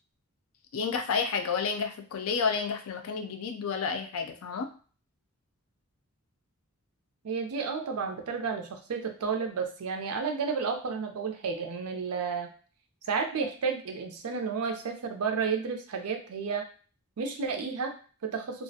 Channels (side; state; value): both; normal; correlation -0.16